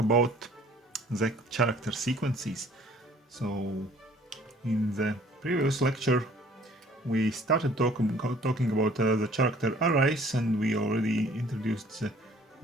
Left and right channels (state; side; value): normal; both; correlation 0.55